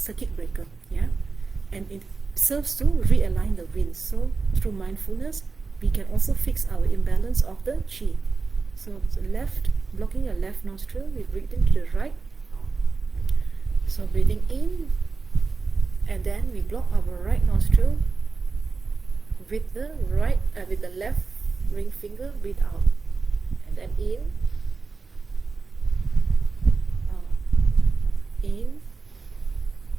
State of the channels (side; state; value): left; quieter; 4.3 dB